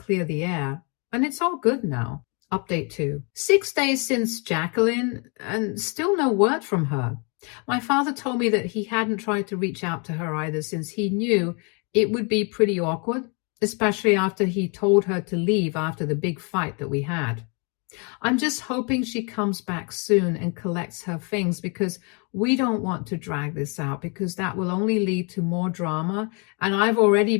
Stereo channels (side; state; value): right; quieter; 35.0 dB